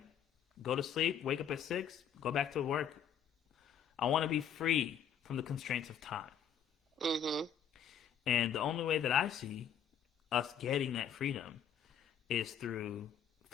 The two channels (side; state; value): right; quieter; 8.1 dB